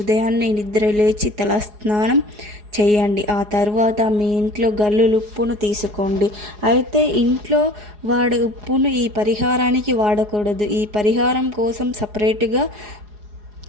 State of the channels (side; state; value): left; late; 4.8 ms